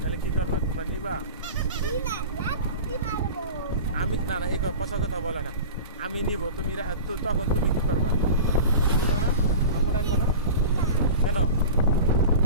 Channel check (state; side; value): inverted; both; correlation -0.33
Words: কি করবা? তোমরা নিবা? আমি না না, এই পচা কথা বলে না। আমি নিব, তুমি তখন তুমি কি করবা? তুমি নিবা না? আম্মু ডাকবা না কেন?